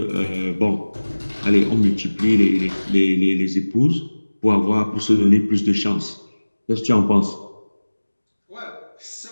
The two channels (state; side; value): inverted; both; correlation -1.00